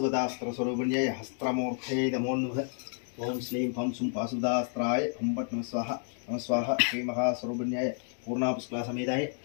हस्त्रमूर्तये नमो नमः। ओम श्लीं फं सुं पाशुपदास्त्राय फं पट् नमः स्वाहा नमः स्वाहा। श्री महास्वरूपिण्याय पूर्णापुष्कला समेताय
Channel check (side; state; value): right; silent; 57 dB below the other